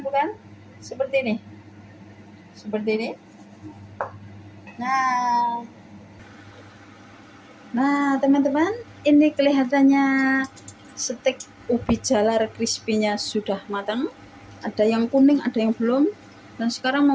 bukan? Seperti ini. Nah, teman-teman, ini kelihatannya steak ubi jalar crispy-nya sudah matang. Ada yang kuning, ada yang belum. Dan sekarang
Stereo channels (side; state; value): both; identical; correlation 1.00